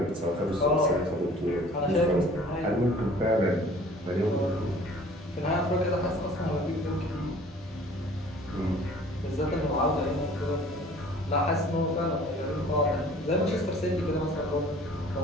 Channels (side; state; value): both; normal; correlation 0.50